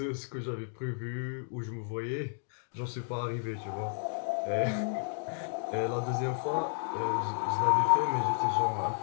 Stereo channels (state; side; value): silent; right; digital silence